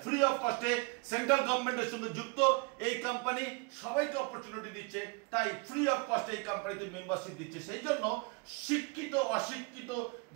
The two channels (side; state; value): left; quieter; 30.4 dB